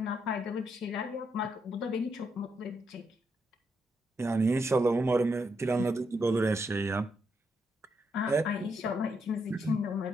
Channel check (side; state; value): both; normal; correlation 0.79